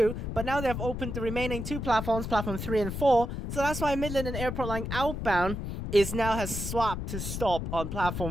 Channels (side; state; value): left; noise; rumble, 5 dB below the sound